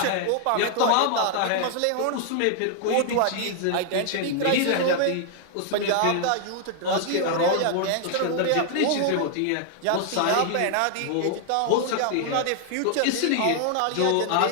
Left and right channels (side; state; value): both; different; correlation 0.00